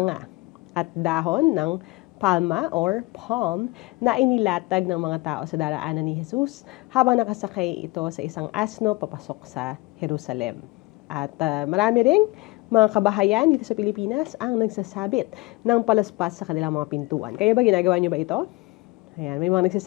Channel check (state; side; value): quieter; right; 22.3 dB